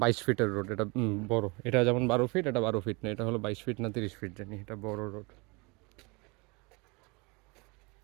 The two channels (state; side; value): quieter; left; 27.9 dB